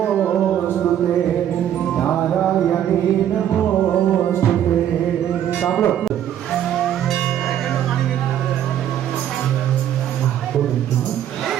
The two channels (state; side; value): quieter; left; 10.6 dB